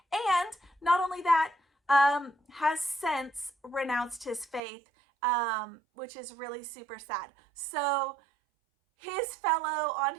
and not only that, has since renounced his faith, which is really super sad. So his fellow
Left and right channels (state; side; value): drops out; left; at 4.6 s